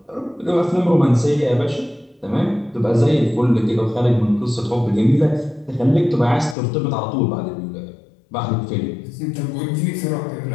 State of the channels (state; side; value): drops out; right; at 6.6 s